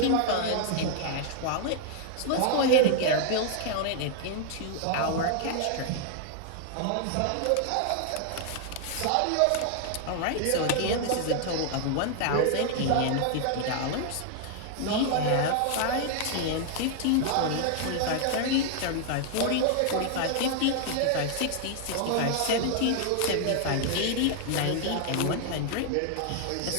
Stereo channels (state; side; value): different; both; correlation 0.00